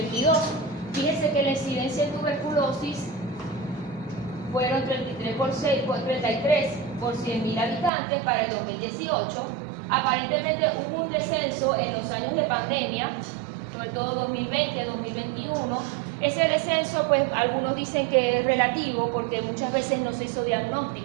Fíjense que la incidencia en tuberculosis fueron 33 por 100.000 habitantes para el 2018. Aparentemente hubo un descenso en los años de pandemia, sobre todo 2020, 2021. Ese descenso, pues algunos dicen que es relativo porque muchas veces no se hizo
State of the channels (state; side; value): drops out; left; at 7.9 s